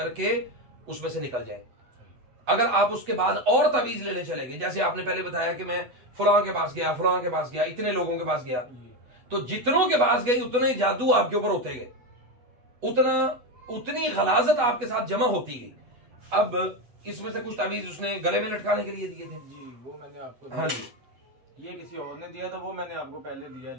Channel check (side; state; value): left; late; 8.1 ms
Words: उसमें से निकल जाएंगे। अगर आप उसके बाद और तावीज लेने चले गए, जैसे आपने पहले बताया कि मैं फलां के पास गया, फलां के पास गया, इतने लोगों के पास गया, तो जितनों के पास गए उतने जादू आपके ऊपर होते गए, उतनी गलाजत आपके साथ जमा होती गई। अब इसमें से कुछ तावीज उसने गले में लटकाने के लिए दिए थे जी, वो मैंने आपको। हाँ जी, ये किसी और ने दिया था, वो मैंने आपको पहले दिया।